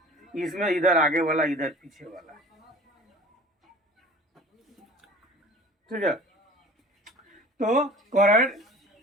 इसमें इधर आगे वाला, इधर पीछे वाला, ठीक है। तो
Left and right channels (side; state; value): both; normal; correlation 0.44